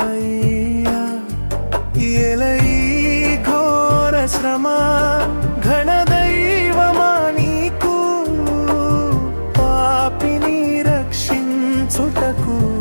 ఎలయి ఘోర శ్రమ ఘనదైవమా నీకు, పాపిని రక్షించుటకు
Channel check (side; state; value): both; inverted; correlation -1.00